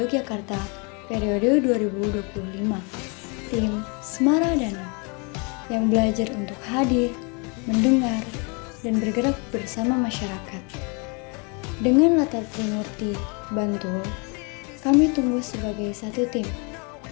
periode 2025, tim Semaradana, yang belajar untuk hadir, mendengar, dan bergerak bersama masyarakat. Dengan latar Trimurti, Bantul, kami tumbuh sebagai satu tim,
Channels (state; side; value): quieter; right; 33.3 dB